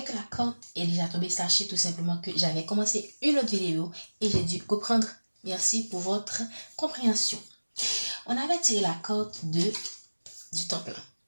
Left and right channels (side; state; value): both; inverted; correlation -1.00